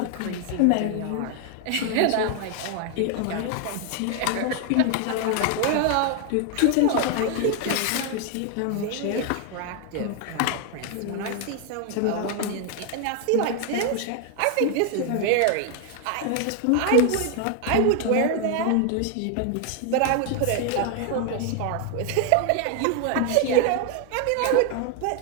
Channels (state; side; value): different; both; correlation 0.01